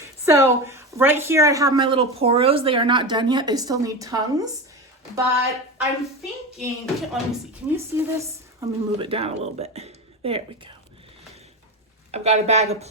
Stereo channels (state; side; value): normal; both; correlation 0.22